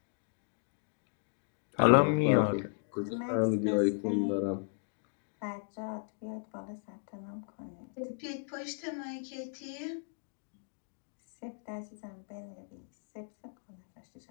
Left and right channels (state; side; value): silent; right; digital silence